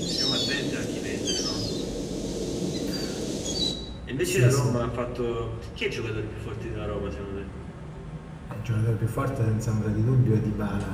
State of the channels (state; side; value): identical; both; correlation 1.00